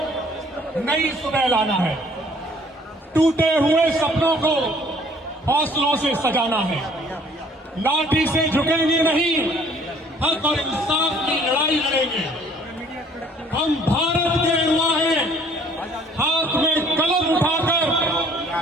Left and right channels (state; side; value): normal; both; correlation 0.57